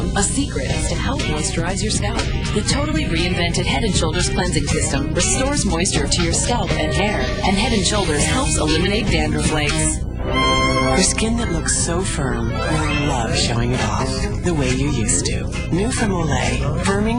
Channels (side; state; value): both; identical; correlation 1.00